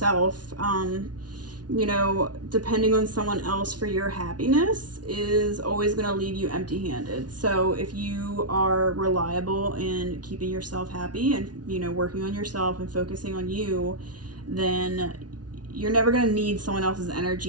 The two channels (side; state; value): left; late; 0.69 ms